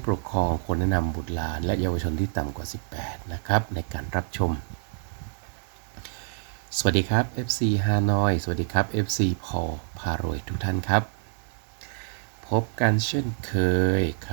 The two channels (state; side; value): silent; left; 60 dB below the other